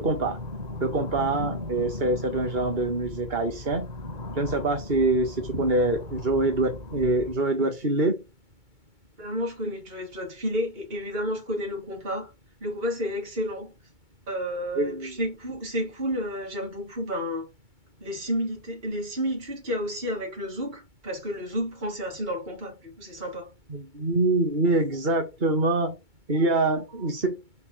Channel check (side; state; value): left; late; 2.2 ms